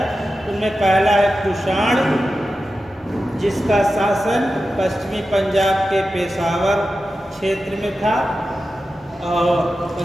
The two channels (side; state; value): both; normal; correlation 0.92